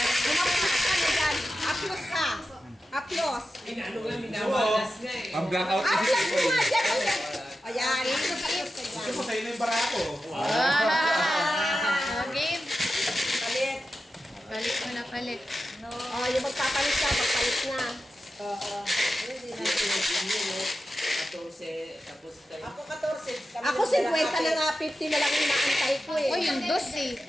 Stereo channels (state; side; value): normal; both; correlation 0.91